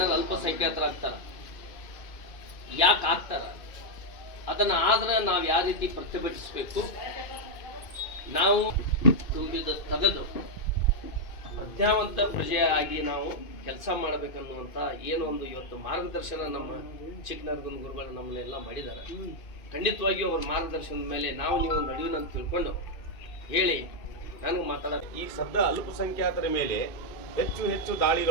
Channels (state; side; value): late; right; 2.5 ms